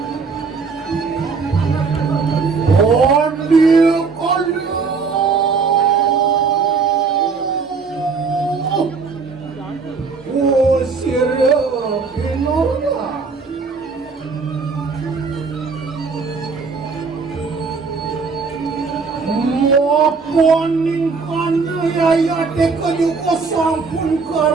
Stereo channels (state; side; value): quieter; left; 4.8 dB